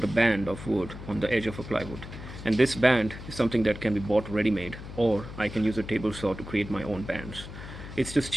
a band of wood on the edge of a plywood. And this band is something that can be bought ready-made, or I can use a table saw to create my own bands. It's just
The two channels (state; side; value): noise; left; hum, 12 dB below the sound